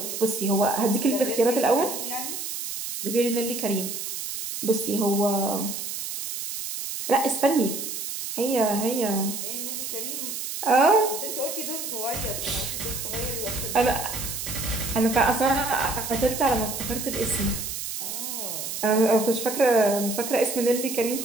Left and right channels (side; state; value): right; noise; hiss, 5 dB below the sound